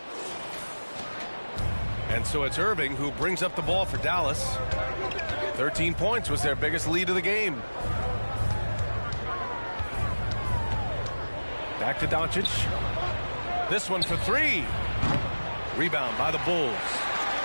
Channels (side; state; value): both; inverted; correlation -1.00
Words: And so it's Irving who brings up the ball for Dallas. 13 points was their biggest lead of the game. Back to Doncic. This one for 3. Rebound by the Bulls.